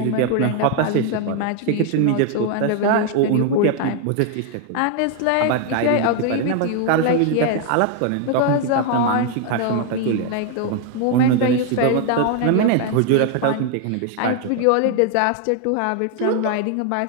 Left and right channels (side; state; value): both; different; correlation 0.01